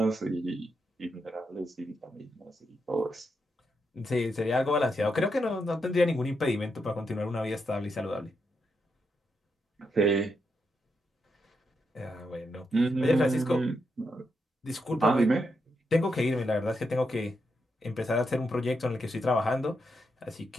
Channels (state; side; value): normal; both; correlation 0.82